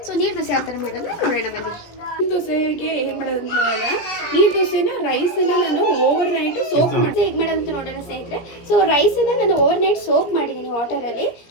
ಸೊ ನೀರು ದೋಸೆ ಯಾವ ಥರ ಮಾಡೋದು ನೋಡೋಣ ಬನ್ನಿ. ನೀರು ದೋಸೆಗೆ ಏನು ಮಾಡೋದಂತ ನೋಡೋಣ. ನೀರು ದೋಸೆನ ರೈಸನ್ನು ನಾನು ಓವರ್ ನೈಟ್ ಸೋಕ್ ಮಾಡಿ ಹೇಗೆ ಮಾಡೋದಂತ ನೋಡೋಣ ಸ್ನೇಹಿತರೆ. ಸೊ ರೈಸನ್ನು ನಾನು ಓವರ್ ನೈಟ್ ಸೋಕ್ ಮಾಡಿದ್ದೀನಿ ವಾಟರಲ್ಲಿ.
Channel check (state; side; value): late; right; 17 ms